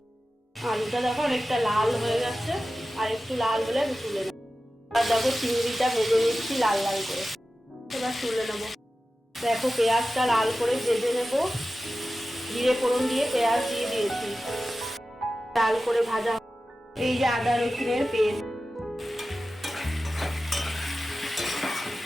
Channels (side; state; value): both; normal; correlation 0.94